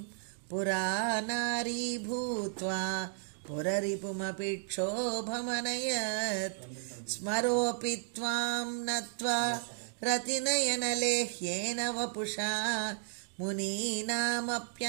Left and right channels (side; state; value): left; silent; digital silence